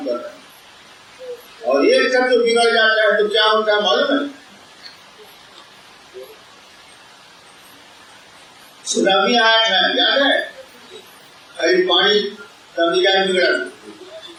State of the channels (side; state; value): both; identical; correlation 1.00